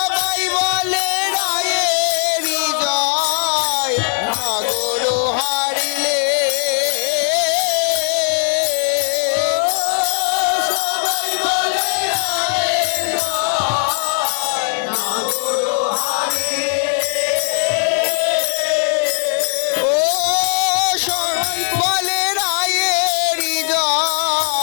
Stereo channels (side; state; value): right; silent; 57 dB below the other